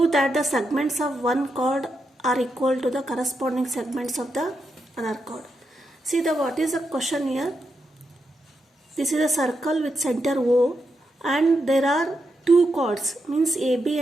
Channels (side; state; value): both; normal; correlation 0.84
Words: that the segments of one chord are equal to the corresponding segments of the other chord. See what is the question here. This is a circle with center O, and there are two chords, means AB